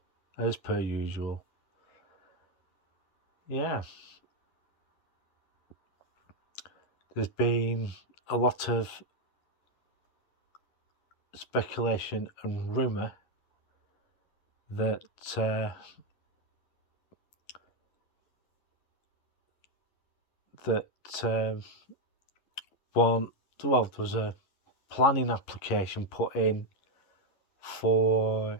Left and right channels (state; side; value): late; right; 11 ms